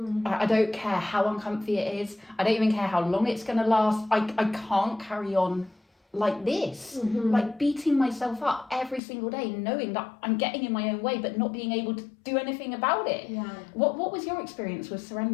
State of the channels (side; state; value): right; drops out; at 9.0 s